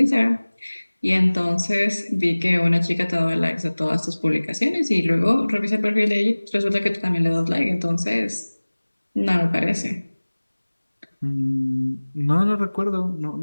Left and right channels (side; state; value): both; inverted; correlation -1.00